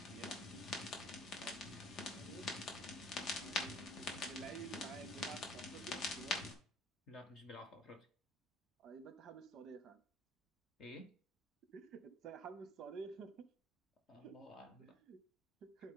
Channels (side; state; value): both; normal; correlation 0.54